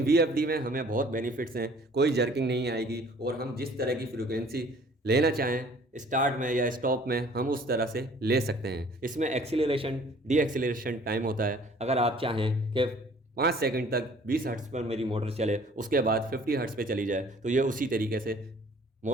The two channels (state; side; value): normal; both; correlation 0.54